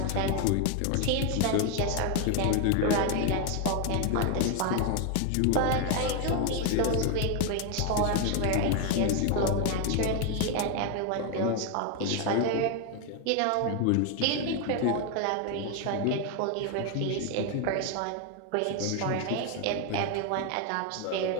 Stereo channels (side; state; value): both; different; correlation 0.01